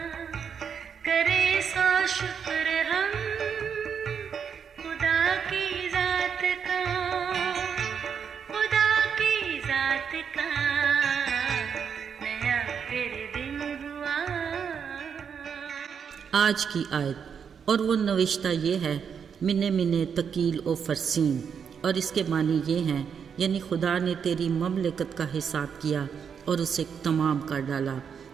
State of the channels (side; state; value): left; quieter; 7.1 dB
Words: करे सो शुक्र हम खुदा की जात का, खुदा की जात का नया फिर दिन हुआ। आज की आयत और वो नविश्ता ये है मिने मिने तकील ओ फरसीन, और इसके मानी ये हैं यानी खुदा ने तेरी ममलकत का हिसाब किया और उसे तमाम कर डाला।